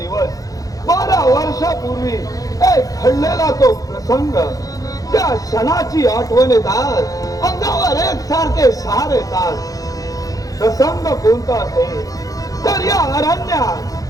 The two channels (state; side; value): late; right; 0.17 ms